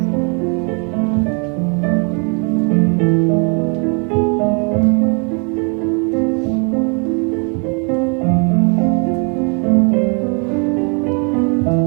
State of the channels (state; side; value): quieter; left; 36.7 dB